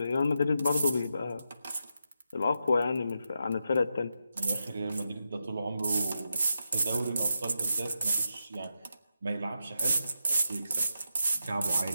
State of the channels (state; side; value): inverted; both; correlation -0.85